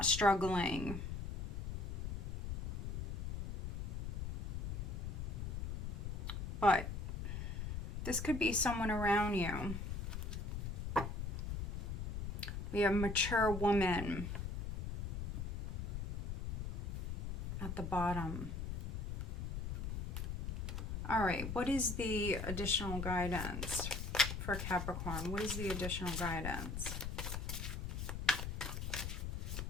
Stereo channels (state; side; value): noise; left; rumble, 3 dB below the sound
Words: struggling. But this could be someone around you. We have mature woman at the bottom. All right, what is the additional guidance for Capricorn? What is the additional guidance?